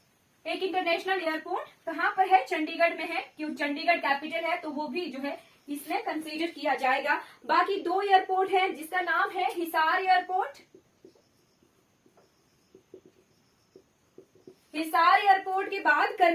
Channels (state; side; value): identical; both; correlation 1.00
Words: एक इंटरनेशनल एयरपोर्ट कहां पर है, चंडीगढ़ में है, क्यों चंडीगढ़ कैपिटल है तो वो भी जो है इसमें कंसीडर किया जाएगा। बाकी दो एयरपोर्ट है जिसका नाम है हिसार एयरपोर्ट, हिसार एयरपोर्ट के बाद